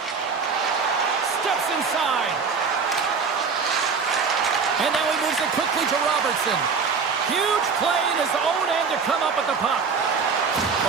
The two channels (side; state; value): left; quieter; 5.4 dB